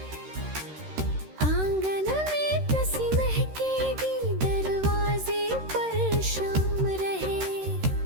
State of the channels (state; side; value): late; left; 13 ms